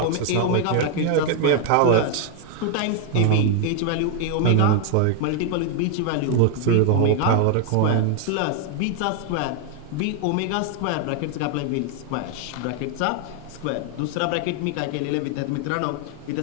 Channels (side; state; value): both; different; correlation 0.00